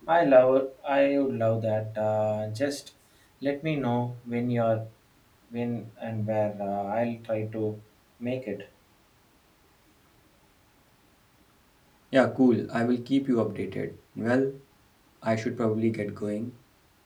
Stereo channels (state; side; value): identical; both; correlation 1.00